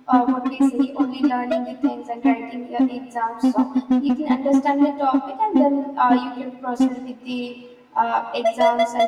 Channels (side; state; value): both; identical; correlation 1.00